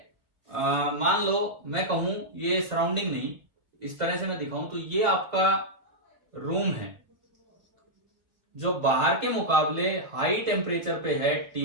मान लो मैं कहूं ये सराउंडिंग नहीं, इस तरह से मैं दिखाऊं तो ये आपका रूम है जो बाहर के मुकाबले हाई टेम्परेचर पे है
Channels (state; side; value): late; left; 1.5 ms